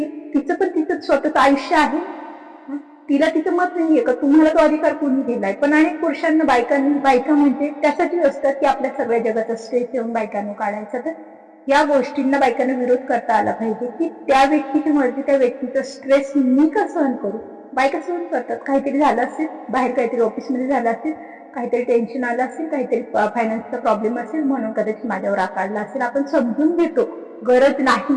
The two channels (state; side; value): identical; both; correlation 1.00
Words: तिचं पण तिचं स्वतःचं आयुष्य आहे. तिला तिचं मत नाहीये का? तुम्हाला तो अधिकार कोणी दिलाय? पण अनेक पुरुषांना बायका म्हणजे त्यासाठी असतात की आपल्या सगळ्या जगाचा स्ट्रेस येऊन बायकांना काढायचा. तर या गोष्टींना बायकांना विरोध करता आला पाहिजे की त्या व्यक्तीची मर्जी, त्या व्यक्तीचा स्ट्रेस मी का सहन करू? बायका सहन करतात. काहीतरी झालं असेल, बाहेर काहीतरी ऑफिसमध्ये झालं असेल, काहीतरी टेन्शन आलं असेल, काहीतरी फायनान्सचा प्रॉब्लेम असेल, म्हणून कदाचित माझ्यावर आकारला असेल. आपण समजून घेतो, गरज